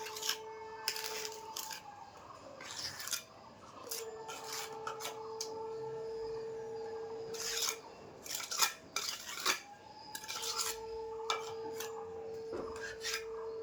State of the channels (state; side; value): identical; both; correlation 1.00